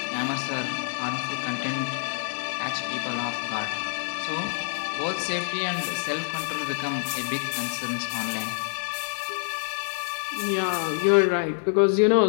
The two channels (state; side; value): silent; right; digital silence